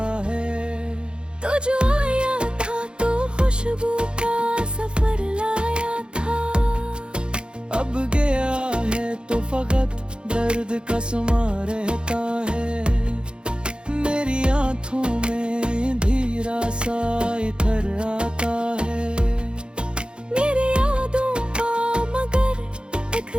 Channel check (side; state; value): left; late; 0.052 ms